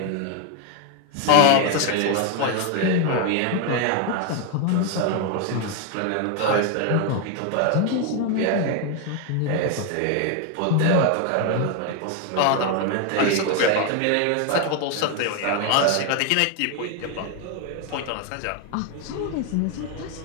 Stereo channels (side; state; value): both; different; correlation 0.01